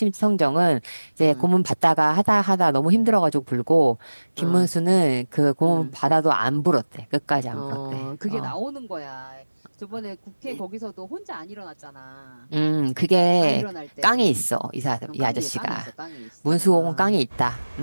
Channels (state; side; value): inverted; both; correlation -1.00